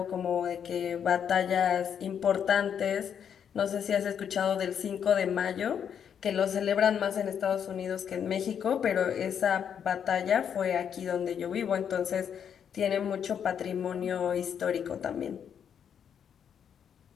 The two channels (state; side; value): quieter; right; 8.1 dB